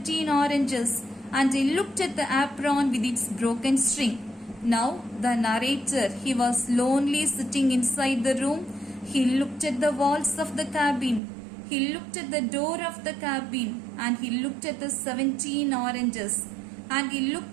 oranges, and I looked at the apron with its broken string. Now the narrator, he was lonely sitting inside the room. He looked at the walls of the cabin. He looked at the door of the cabin and he looked at the 17 oranges and he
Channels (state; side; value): drops out; left; at 11.2 s